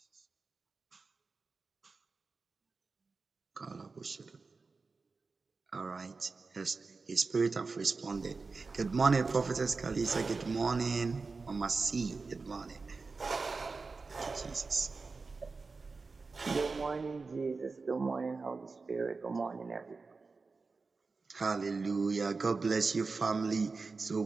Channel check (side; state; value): left; quieter; 4.2 dB